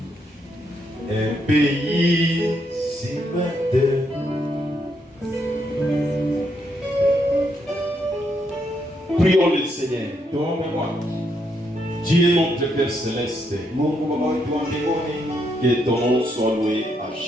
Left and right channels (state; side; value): normal; both; correlation 0.77